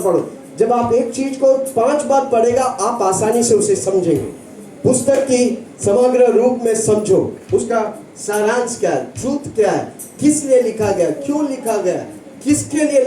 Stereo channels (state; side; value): identical; both; correlation 1.00